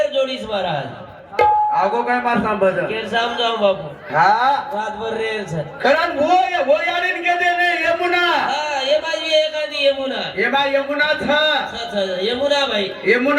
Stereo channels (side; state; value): both; identical; correlation 1.00